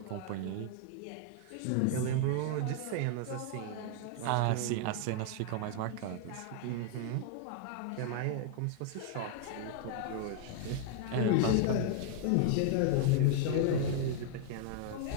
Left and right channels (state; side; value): different; both; correlation -0.01